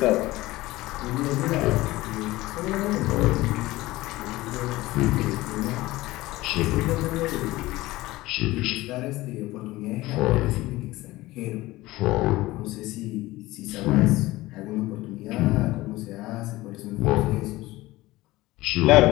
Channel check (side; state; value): right; quieter; 18.6 dB